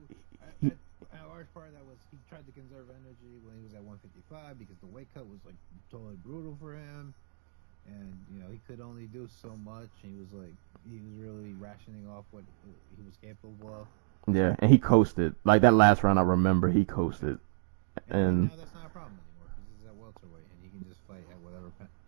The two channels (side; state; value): left; silent; digital silence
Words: large part of that was he tried to conserve energy when he was at 155 because the weight cut was like totally brutal for him, and he could only do so much. And he was really rationing off what he was capable of. Yeah, and he coasted. Like that last round, I remember he coasted. Yeah. And now that's not a problem anymore because he's at welterweight and he can just fight at whatever